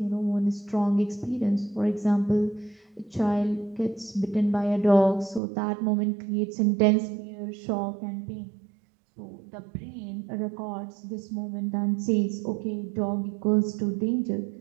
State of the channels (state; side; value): drops out; left; at 5.4 s